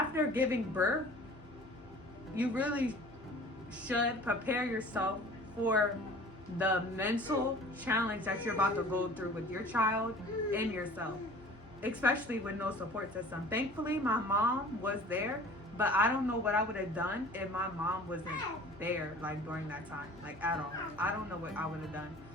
giving birth, you really should prepare yourself for the mental challenge that you're about to go through with your child and yourself, especially with no support system. Thankfully, my mom was there, but I don't know what I would have done if my mom wasn't there, like during that time, like at all. I don't know what I would have done.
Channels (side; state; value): both; normal; correlation 0.45